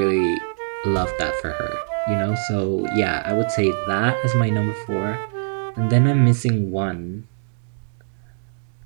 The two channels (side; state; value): left; silent; digital silence